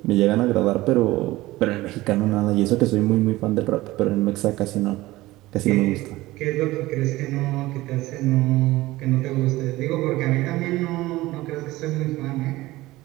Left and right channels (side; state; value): left; quieter; 18.3 dB